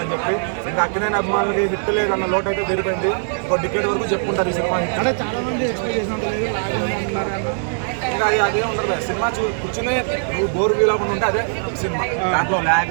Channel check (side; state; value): left; silent; digital silence